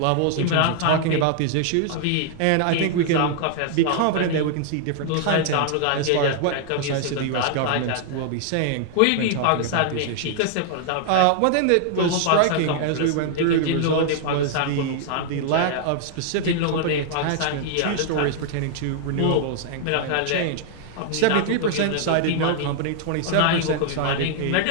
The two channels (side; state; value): both; different; correlation -0.01